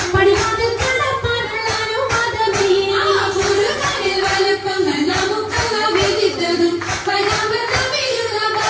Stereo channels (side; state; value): both; identical; correlation 1.00